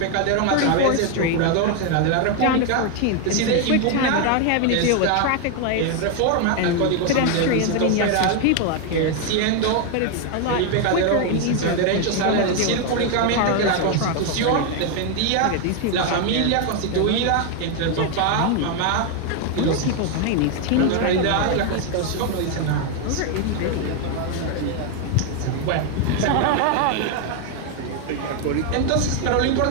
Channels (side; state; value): both; different; correlation 0.01